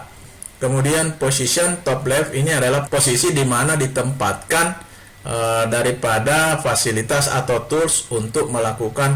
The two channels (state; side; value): identical; both; correlation 1.00